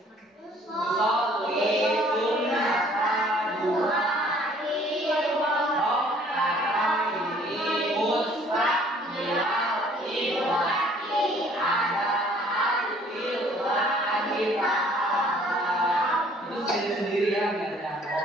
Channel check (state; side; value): normal; both; correlation 0.57